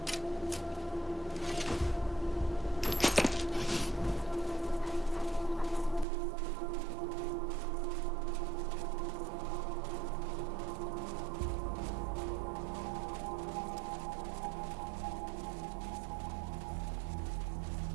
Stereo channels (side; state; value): left; drops out; at 6.1 s